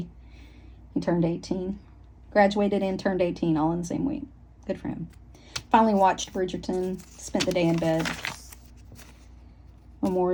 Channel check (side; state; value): both; identical; correlation 1.00